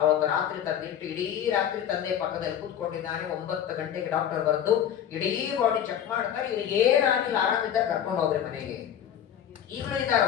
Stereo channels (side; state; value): right; quieter; 9.7 dB